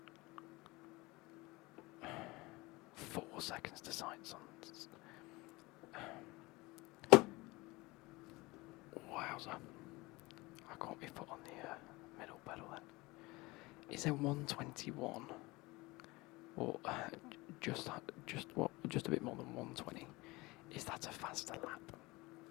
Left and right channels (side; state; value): right; quieter; 22.4 dB